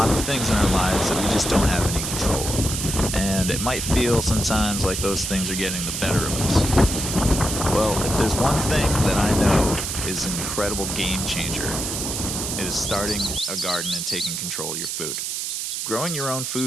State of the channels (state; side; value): noise; right; hiss, 3 dB below the sound